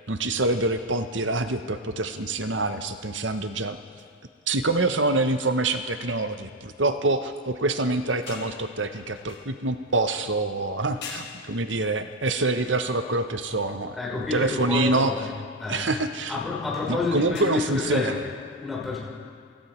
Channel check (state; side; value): normal; both; correlation 0.09